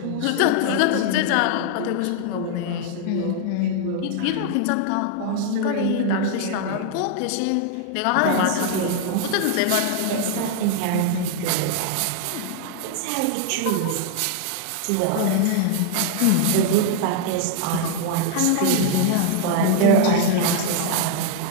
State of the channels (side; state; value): both; different; correlation 0.00